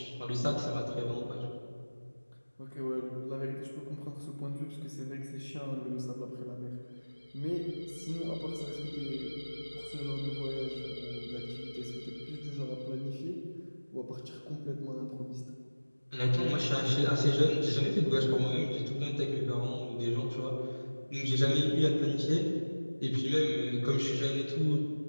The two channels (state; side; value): inverted; both; correlation -1.00